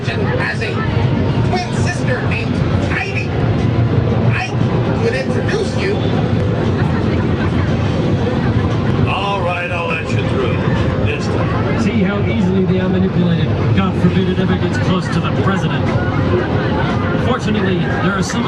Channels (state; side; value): identical; both; correlation 1.00